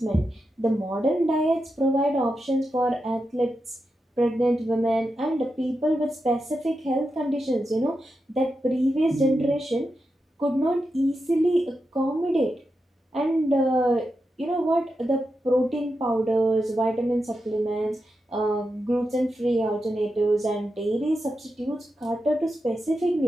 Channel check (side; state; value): both; normal; correlation 0.88